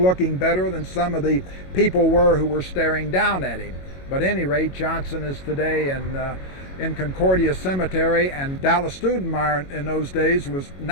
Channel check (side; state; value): right; late; 21 ms